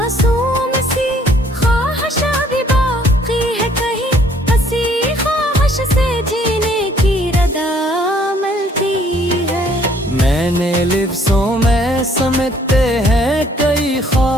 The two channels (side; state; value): both; normal; correlation 0.62